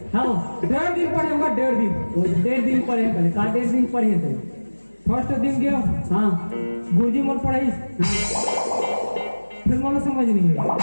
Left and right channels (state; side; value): inverted; both; correlation -1.00